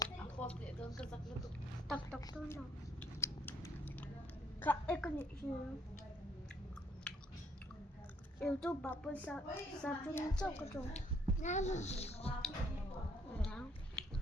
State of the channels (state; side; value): normal; both; correlation 0.66